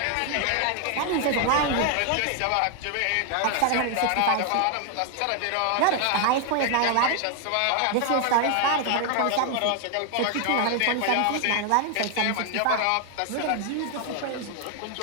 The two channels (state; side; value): different; both; correlation 0.00